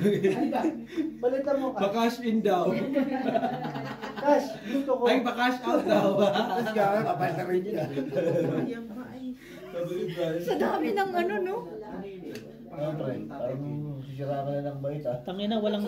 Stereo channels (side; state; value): both; identical; correlation 1.00